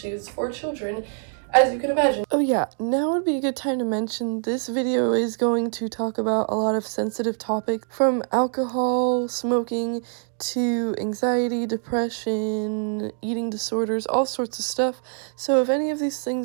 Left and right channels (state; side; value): silent; left; 62 dB below the other